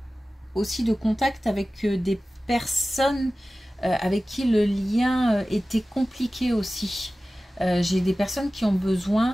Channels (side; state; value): both; normal; correlation 0.96